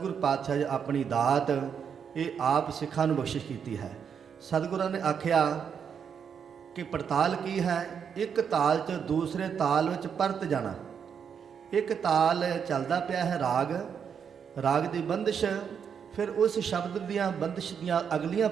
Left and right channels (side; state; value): left; quieter; 7.2 dB